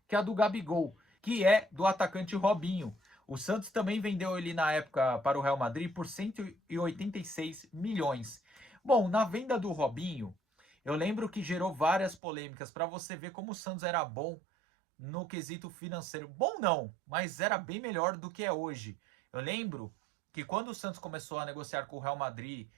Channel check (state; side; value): drops out; left; at 12.2 s